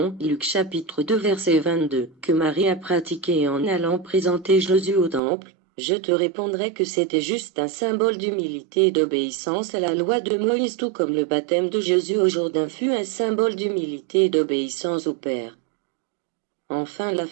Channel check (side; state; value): left; drops out; at 5.2 s